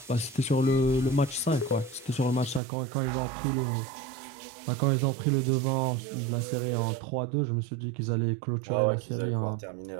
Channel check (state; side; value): drops out; left; at 2.6 s